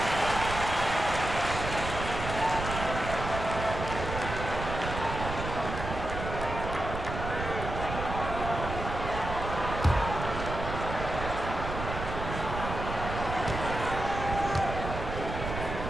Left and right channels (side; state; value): right; noise; rumble, 6 dB below the sound